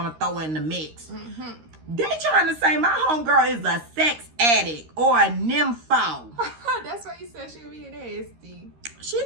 to throw in the mix. They trying to say my homegirl is a sex addict or a nympho. That's why you said she was being nasty. She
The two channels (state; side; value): late; left; 13 ms